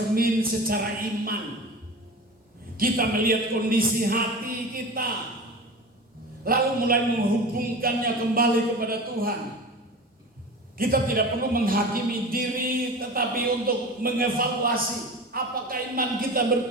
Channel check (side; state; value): both; normal; correlation 0.32